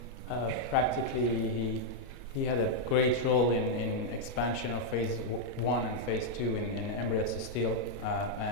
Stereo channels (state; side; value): normal; both; correlation -0.03